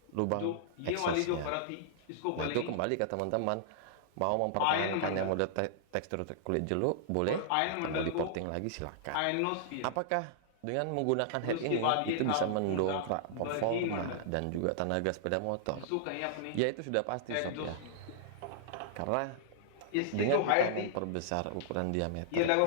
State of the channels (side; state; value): both; different; correlation -0.01